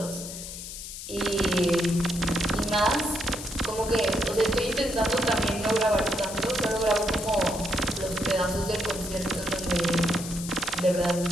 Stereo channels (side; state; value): left; noise; hiss, 10 dB below the sound